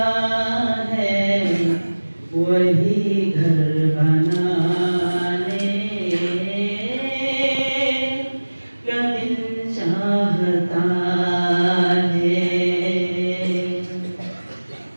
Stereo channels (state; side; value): inverted; both; correlation -1.00